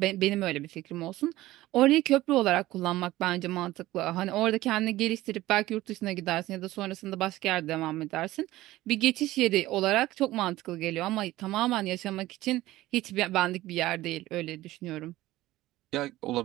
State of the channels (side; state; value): left; quieter; 16.7 dB